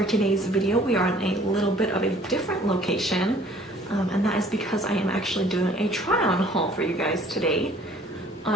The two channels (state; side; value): normal; both; correlation 0.55